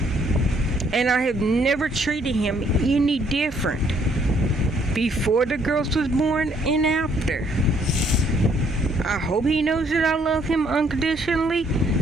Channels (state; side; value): normal; both; correlation 0.66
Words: And I have never treated him any different before the girls was born and after. I hope he knows that I love him unconditionally,